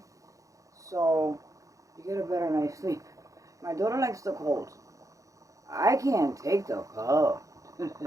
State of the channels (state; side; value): late; left; 0.16 ms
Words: so you get a better night's sleep. My daughter likes the cold. I can't take the cold,